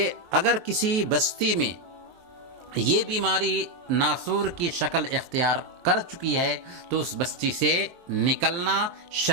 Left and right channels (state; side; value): late; left; 23 ms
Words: اگر کسی بستی میں یہ بیماری ناسور کی شکل اختیار کر چکی ہے تو اس بستی سے نکلنا